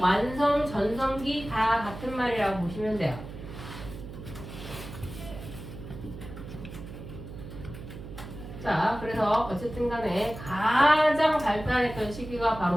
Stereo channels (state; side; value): noise; right; hum, 12 dB below the sound